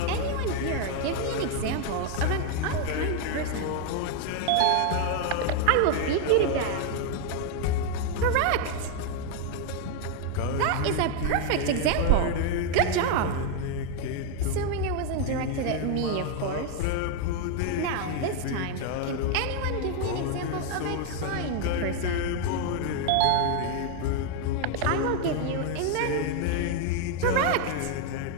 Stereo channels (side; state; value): both; different; correlation 0.01